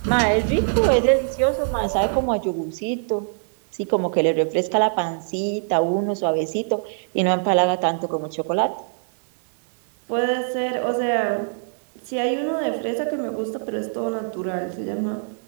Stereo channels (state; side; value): silent; left; 63 dB below the other